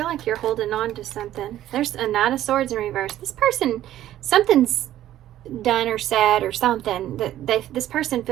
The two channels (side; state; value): left; quieter; 12.9 dB